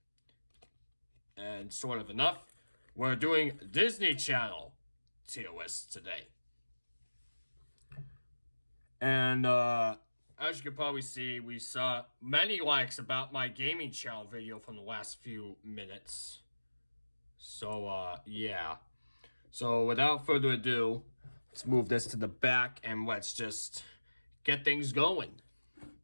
And sort of enough, we're doing Disney Channel tier list today. And as you can probably see, we saw many likes about my gaming channel video from the last few minutes. So, yeah. So, without further ado, let's move this to the back and let's just get things going.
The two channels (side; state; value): both; inverted; correlation -1.00